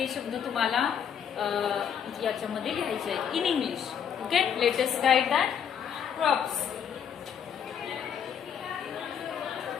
शब्द तुम्हाला याच्यामध्ये लिहायचे आहेत in English. Okay. Late us right that. Crops.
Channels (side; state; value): right; quieter; 8.1 dB